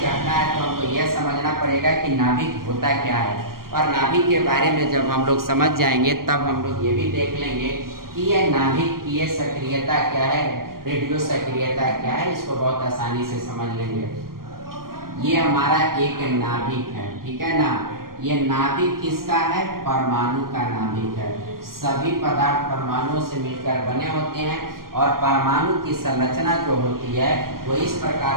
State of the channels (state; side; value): late; left; 0.92 ms